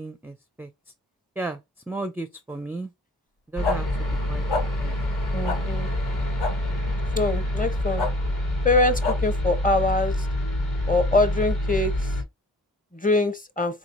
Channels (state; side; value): normal; both; correlation 0.49